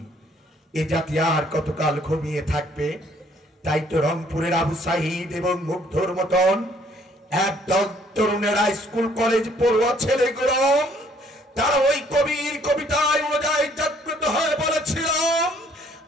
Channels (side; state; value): both; normal; correlation 0.62